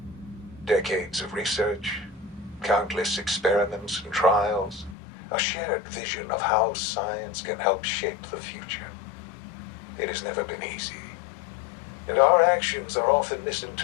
Decades of research, countless experiments and trials, a shared vision of how science can help shape the future. It has never been easy, and our actions are often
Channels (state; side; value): drops out; right; at 5.0 s